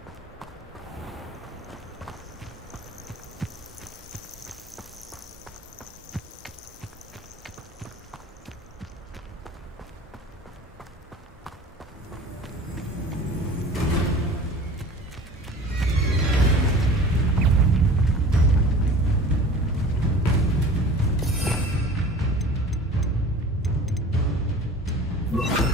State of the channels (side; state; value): both; normal; correlation 0.42